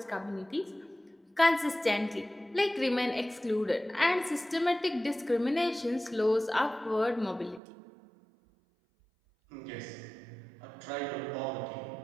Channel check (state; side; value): drops out; left; at 7.6 s